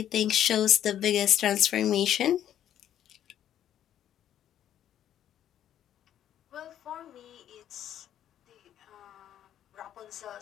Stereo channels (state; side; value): quieter; right; 10.8 dB